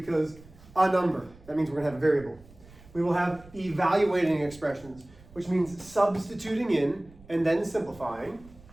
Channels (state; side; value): noise; right; rumble, 23 dB below the sound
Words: a number. That means we're going to have a variable. We will have evaluating expressions, which means substituting in and then simplifying.